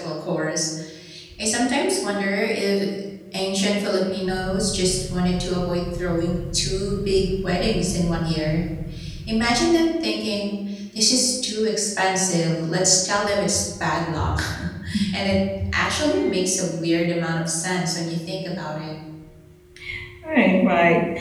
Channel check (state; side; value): identical; both; correlation 1.00